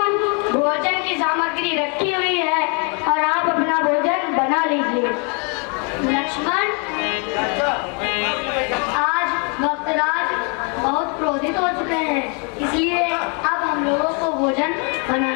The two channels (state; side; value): quieter; right; 36.0 dB